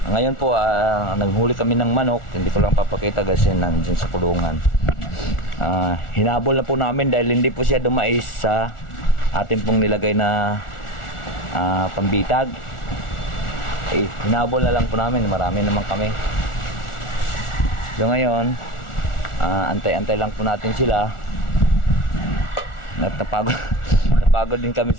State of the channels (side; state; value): right; late; 1.4 ms